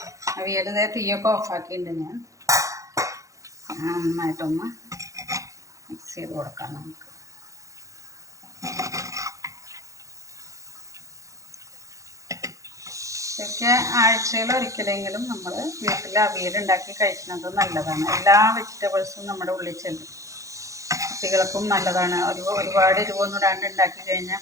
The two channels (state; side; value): late; left; 0.15 ms